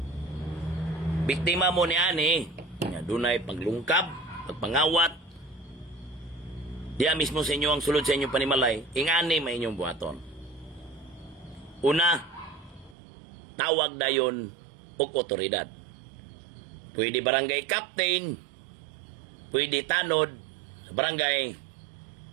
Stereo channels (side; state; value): left; drops out; at 13.0 s